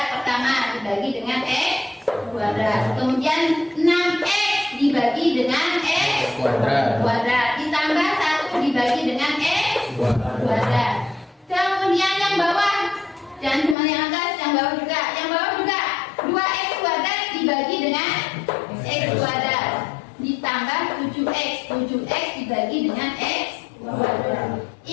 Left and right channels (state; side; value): drops out; right; at 13.8 s